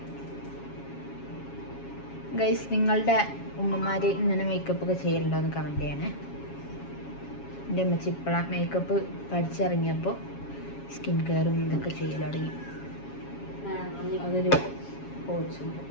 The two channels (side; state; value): right; late; 7.3 ms